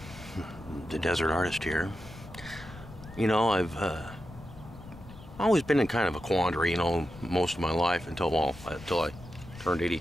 the Desert Artist here. You know, I've always been in kind of a quandary, most of my life until I turned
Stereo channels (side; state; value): left; noise; rumble, 17 dB below the sound